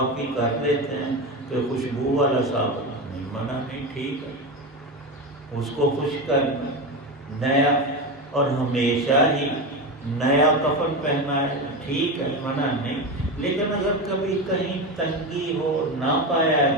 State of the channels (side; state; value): both; normal; correlation 0.19